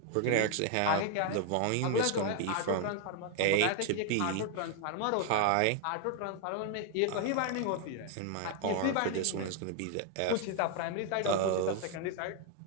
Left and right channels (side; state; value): both; different; correlation 0.00